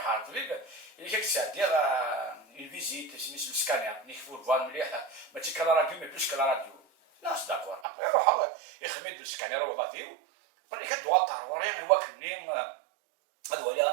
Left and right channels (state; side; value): drops out; left; at 7.9 s